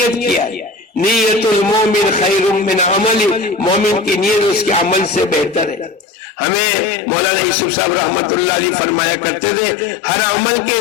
کیا ہے۔ نیت المومن خیر من عمل، مومن کی نیت اس کے عمل سے بہتر ہے۔ ہمیں مولانا یوسف صاحب رحمت اللہ علیہ فرمایا کرتے تھے ہر عمل کے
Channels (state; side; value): drops out; right; at 6.1 s